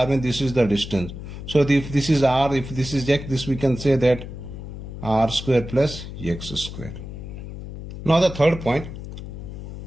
means this is the distance. So if this is R, if this is X, this we can say that R square plus X square. Now the third point,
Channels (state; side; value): noise; left; hum, 10 dB below the sound